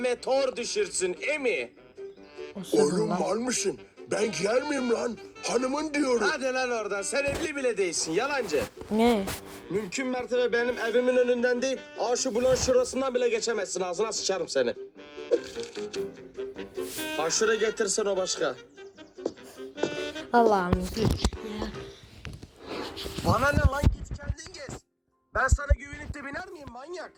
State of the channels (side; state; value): both; identical; correlation 1.00